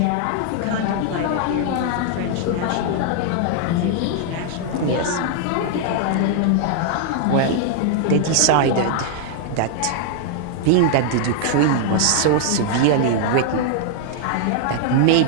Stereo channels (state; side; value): different; both; correlation -0.01